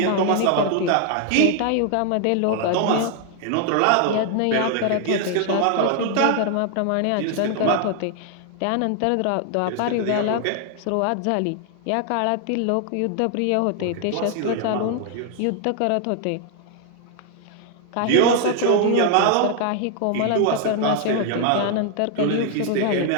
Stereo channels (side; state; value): both; different; correlation 0.00